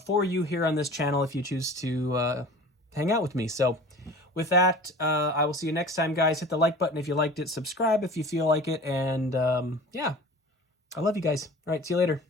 for you here on this channel if you choose to hang out with me. So with that, I will see you next time, guys. Hit the like button if you liked it, subscribe if you feel like it, and yeah, I love you guys. All right, see you later.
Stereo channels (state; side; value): normal; both; correlation 0.40